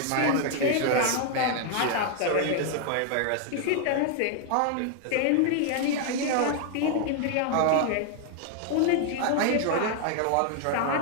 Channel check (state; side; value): different; both; correlation 0.00